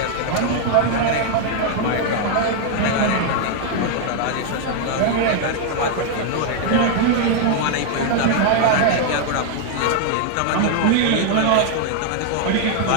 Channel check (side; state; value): both; different; correlation 0.00